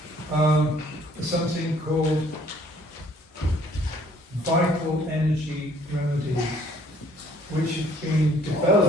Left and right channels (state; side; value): normal; both; correlation 0.60